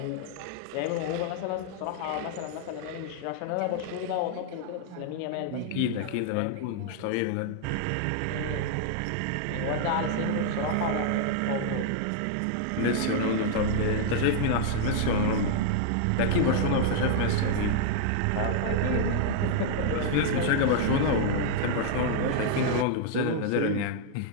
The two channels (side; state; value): both; different; correlation -0.01